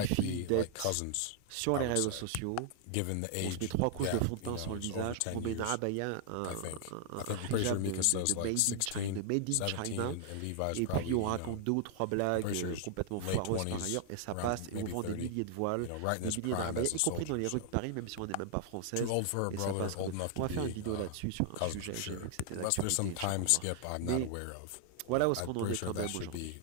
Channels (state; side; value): different; both; correlation 0.00